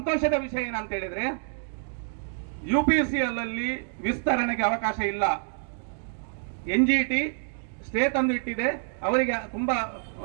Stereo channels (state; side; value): silent; left; digital silence